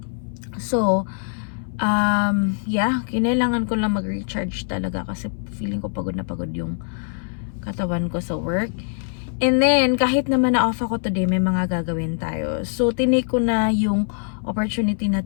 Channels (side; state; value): right; silent; 61 dB below the other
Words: So, kinailangan ko lang mag-recharge talaga kasi feeling ko pagod na pagod yung katawan ko sa work. And then, kahit naman na-off ako today, may mga gagawin tayo. So, tinake ko na yung opportunity na